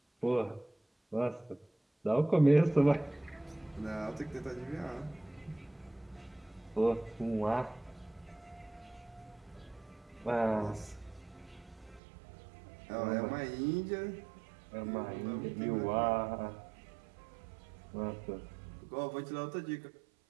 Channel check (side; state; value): left; drops out; at 12.0 s